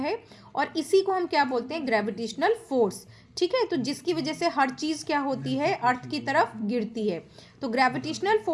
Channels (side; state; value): both; identical; correlation 1.00